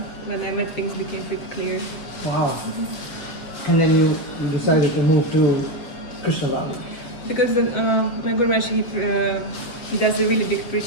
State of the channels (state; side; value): late; right; 7.4 ms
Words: when I met, things became pretty clear. Wow. And then you decided to move to Krishna Valley. Because my Guru Maharaj, he does a really big